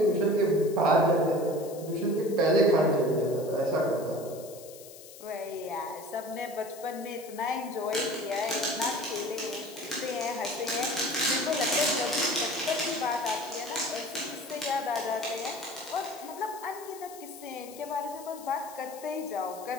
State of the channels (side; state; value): left; noise; hiss, 17 dB below the sound